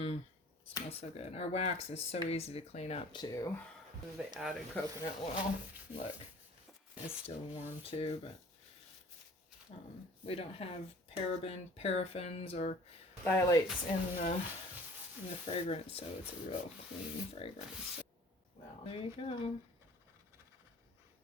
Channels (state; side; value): normal; both; correlation 0.49